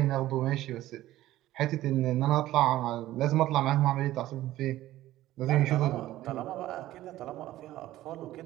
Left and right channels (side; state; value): left; quieter; 15.0 dB